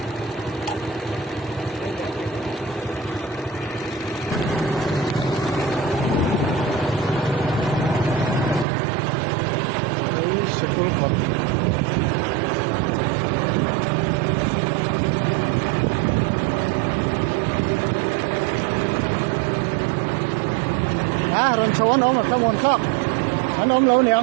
đấy sẽ có thật rồi số anh ôm một cái môn khác anh ôm lâu niệm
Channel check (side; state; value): left; drops out; at 8.7 s